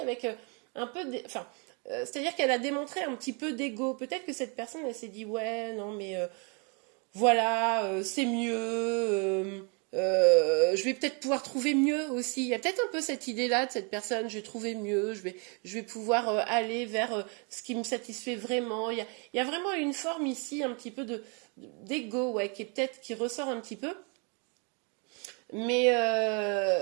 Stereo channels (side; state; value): left; quieter; 35.1 dB